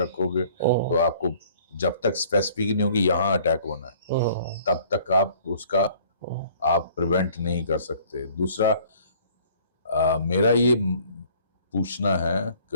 तो आपको जब तक स्पेसिफिक नहीं होगी यहाँ अटैक होना है, तब तक आप उसका आप प्रिवेंट नहीं कर सकते। दूसरा मेरा ये पूछना है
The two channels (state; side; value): inverted; both; correlation -0.55